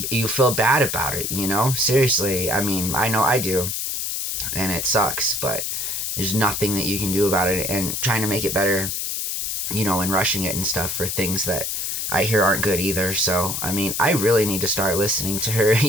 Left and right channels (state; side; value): noise; left; hiss, 2 dB below the sound